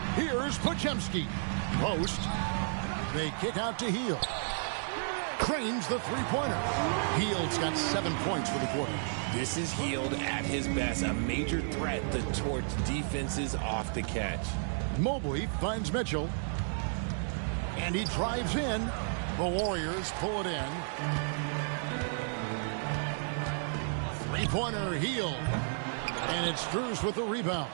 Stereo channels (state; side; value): silent; left; digital silence